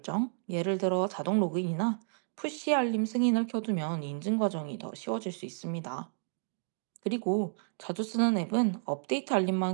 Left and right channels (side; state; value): left; silent; digital silence